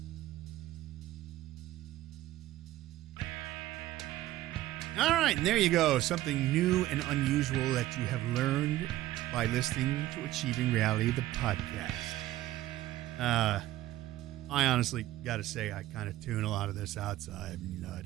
All right, and there you go. Something new and unusual that you have learned by listening to Achieving Reality, the podcast. I honestly got to say, I kind of tune a lot of this outside. No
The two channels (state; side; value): quieter; left; 15.2 dB